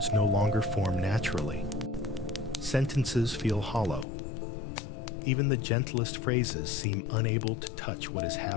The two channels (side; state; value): right; drops out; at 4.0 s